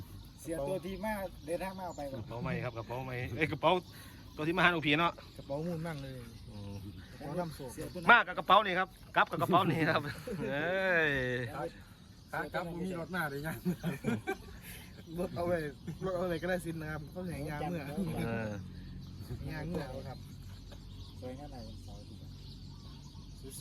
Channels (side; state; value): both; identical; correlation 1.00